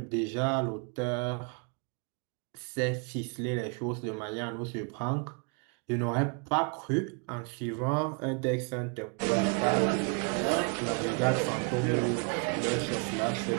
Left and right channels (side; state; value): left; quieter; 35.6 dB